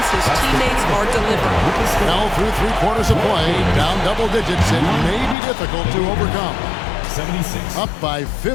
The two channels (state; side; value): drops out; right; at 5.4 s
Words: his teammates are delivering. Now through 3 quarters of play, down double digits, it may be difficult to overcome. 76. Up by